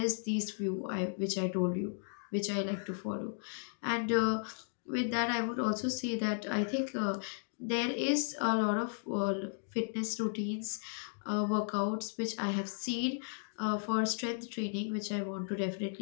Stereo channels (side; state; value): right; silent; digital silence